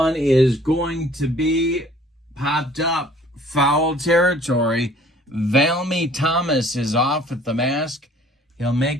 is going to be popped up. Foul territory. Valmy Thomas is off at the mask. He'll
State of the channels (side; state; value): both; normal; correlation 0.55